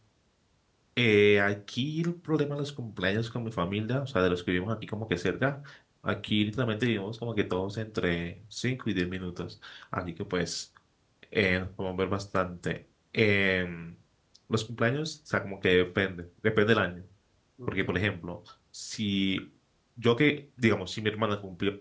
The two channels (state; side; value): identical; both; correlation 1.00